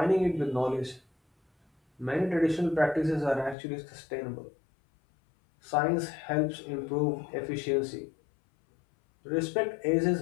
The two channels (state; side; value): drops out; right; at 3.6 s